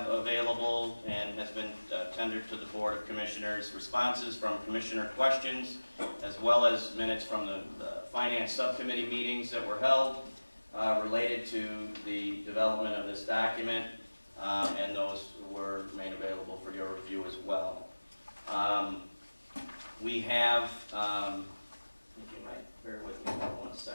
available and has been tendered to the Board of Commissioners responses from commissioner questions, as well as minutes from the Finance Subcommittee meetings that were held related to the development of this document, and those were made available for your review as well. We have, if you might bear with me for 1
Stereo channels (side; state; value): both; inverted; correlation -1.00